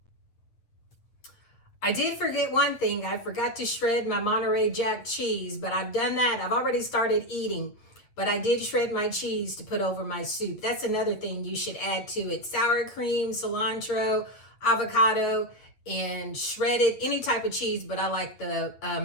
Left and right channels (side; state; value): right; late; 8.4 ms